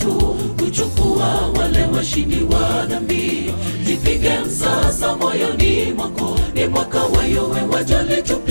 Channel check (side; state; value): both; inverted; correlation -1.00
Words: kuchukua wale washindi wa dhambi. Jipige msasa moyoni mwako, ni mwaka wa yowe, wajali